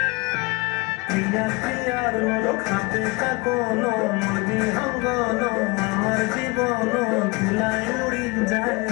প্রিয়া প্রিয়ার নলক হাতে কাকন, মর্জি অঙ্গন আমার জীবন ধুলায় উড়ি যায়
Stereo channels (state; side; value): quieter; right; 25.5 dB